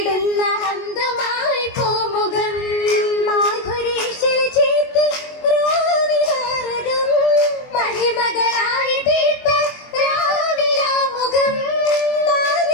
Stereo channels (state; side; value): late; right; 22 ms